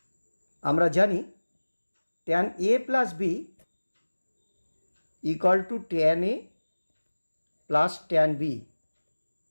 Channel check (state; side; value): inverted; both; correlation -1.00